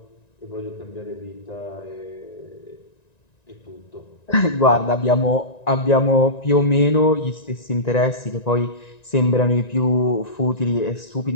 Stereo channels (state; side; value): late; right; 1.9 ms